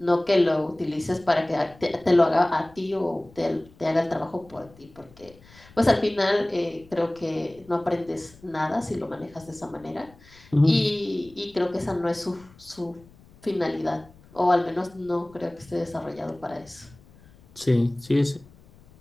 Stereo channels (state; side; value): noise; left; rumble, 25 dB below the sound